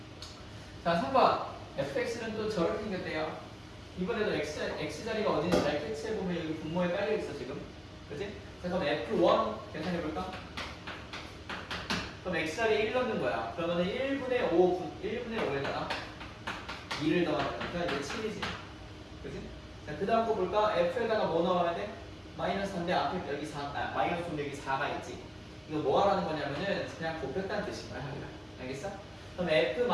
자, 3번 fx는 또 저렇게 생겼대요. 이번에도 x자리가 어딘지 잘 캐치해보면 여기 분모에 깔려있어 지금. 그치? 자, 그럼 f1 계산해볼까? 그럼 x자리에 1 넣는 거야. 그러면 1분의 5에다가 2를 더하니까 이제 7이지. 그치? 자, 그 다음 거 볼까? f에다가 뭐 넣어야 돼? 마이너스 3인데 앞에 여기 4, 마이너스 5인데 여기 4가 있지. 이거 뭐 하라는 거냐면은 그냥 곱했다는 뜻인 거야, 하기가. 알겠어? 그럼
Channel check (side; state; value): both; identical; correlation 1.00